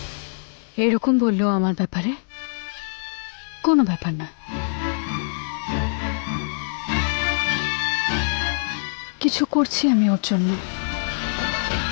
এরকম বললো আমার ব্যাপারে? কোনো ব্যাপার না, কিছু করছি আমি ওর জন্য।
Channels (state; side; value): silent; right; digital silence